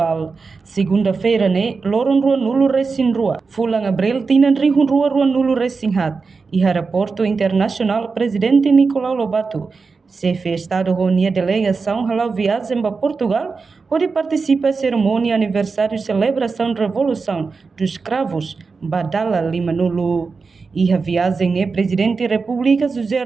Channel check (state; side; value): quieter; left; 4.6 dB